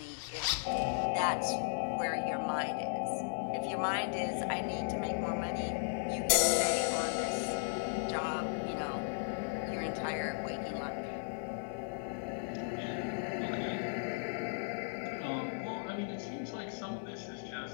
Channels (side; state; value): right; silent; 54 dB below the other